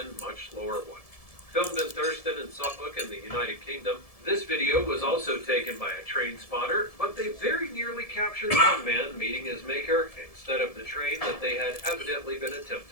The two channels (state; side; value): late; right; 1.7 ms